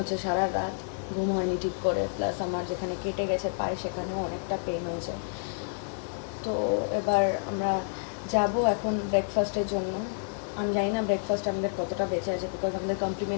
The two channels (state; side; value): silent; right; digital silence